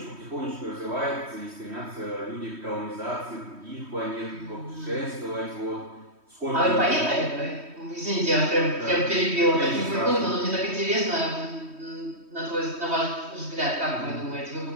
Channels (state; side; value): late; left; 3.1 ms